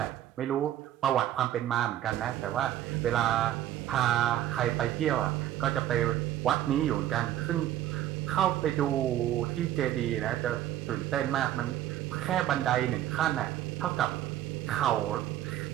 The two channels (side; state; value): left; quieter; 12.5 dB